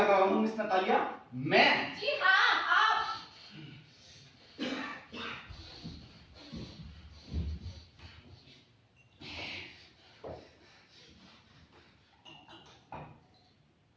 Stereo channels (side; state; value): both; identical; correlation 1.00